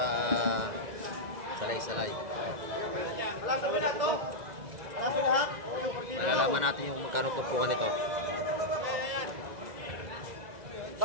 salay-salay. Malalaman natin yung magkano tumpukan nito.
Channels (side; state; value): left; late; 2.0 ms